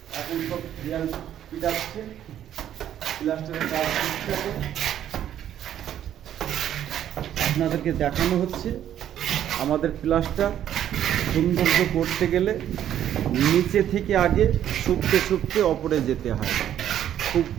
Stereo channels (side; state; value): left; quieter; 10.8 dB